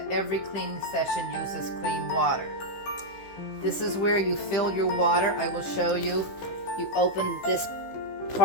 every cleaning session uses clean water. This is where you fill your water. I will show you. You open this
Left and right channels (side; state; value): right; late; 15 ms